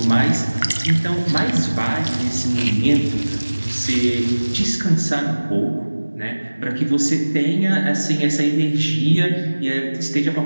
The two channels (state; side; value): inverted; both; correlation -1.00